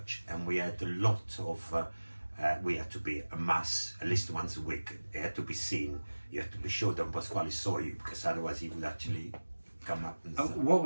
and we had a lot of, we had to be a mass at least once a week. It had to be seen. You had to be sure that Pasquale saw you, because otherwise he would actually come up and What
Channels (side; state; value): both; inverted; correlation -1.00